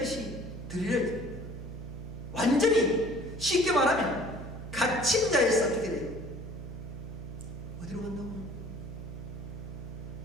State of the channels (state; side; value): noise; right; hum, 9 dB below the sound